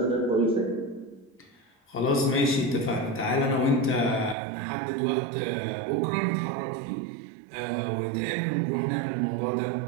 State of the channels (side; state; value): left; drops out; at 4.4 s